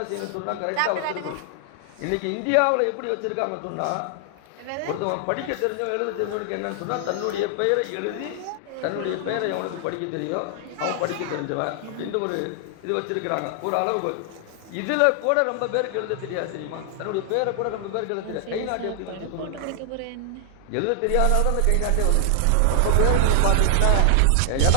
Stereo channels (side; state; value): both; different; correlation 0.00